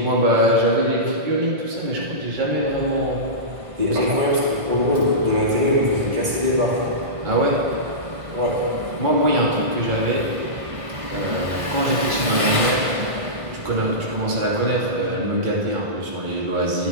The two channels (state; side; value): late; left; 1.5 ms